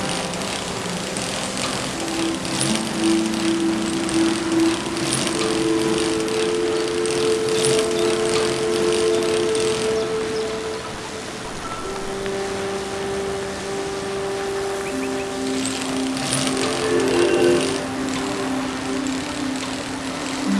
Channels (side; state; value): both; identical; correlation 1.00